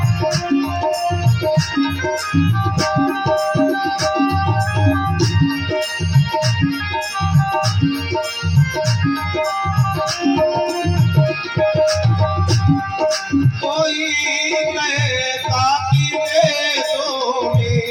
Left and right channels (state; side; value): identical; both; correlation 1.00